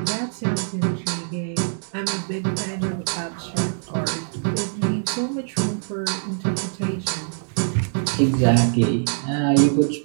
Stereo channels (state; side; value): silent; left; digital silence